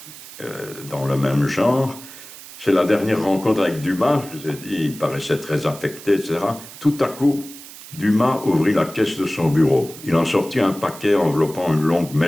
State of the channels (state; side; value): noise; right; hiss, 16 dB below the sound